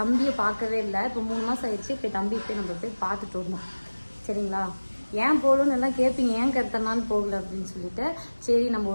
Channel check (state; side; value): inverted; both; correlation -1.00